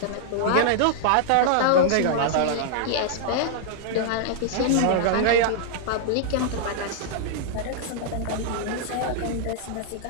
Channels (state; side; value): different; both; correlation -0.01